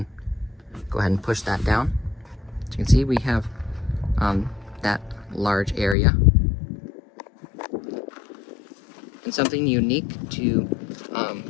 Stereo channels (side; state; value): right; drops out; at 6.0 s